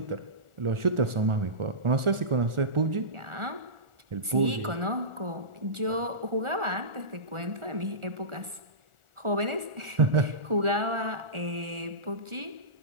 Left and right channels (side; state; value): left; late; 1.4 ms